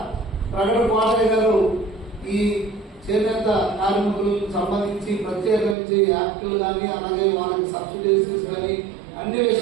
ప్రగడ కోటయ్య గారు ఈ చేనేత కార్మికులకు సంబంధించి ప్రత్యేకించి యాక్టులు కానీ, అలాగే వాళ్ళకి సబ్సిడీస్ కానీ అన్ని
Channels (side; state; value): left; drops out; at 5.8 s